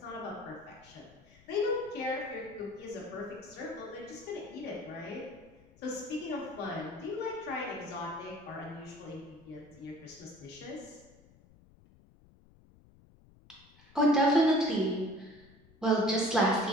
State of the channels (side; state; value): left; noise; rumble, 26 dB below the sound